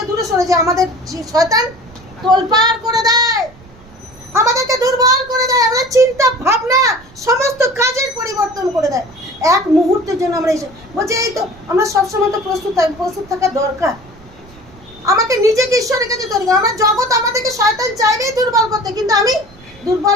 দূরে সরে যাই, আমাদের শয়তান তোলপাড় করে দেয়, আমাদেরকে দুর্বল করে দেয়, আমাদের চিন্তা ভাবনা সমস্ত কাজের পরিবর্তন করে দেয়। এক মুহূর্তের জন্য আমরা বলছি এই তো আমরা সবসময় তো প্রস্তুত থাকা দরকার। আমাকে নিজেকে ঈশ্বরের কাছে তৈরি করা। আমার জগৎ আমাদেরকে শয়তান চাইবেই দুর্বল করতে, কিন্তু আমি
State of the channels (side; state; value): right; noise; rumble, 24 dB below the sound